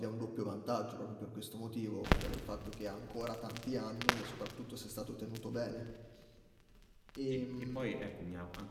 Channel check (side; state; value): both; identical; correlation 1.00